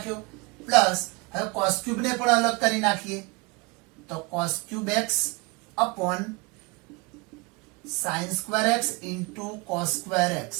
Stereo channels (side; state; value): left; quieter; 27.2 dB